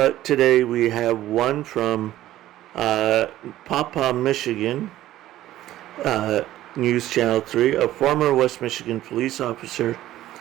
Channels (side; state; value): left; quieter; 14.2 dB